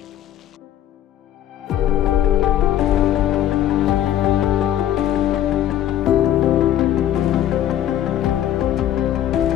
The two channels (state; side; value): quieter; right; 11.5 dB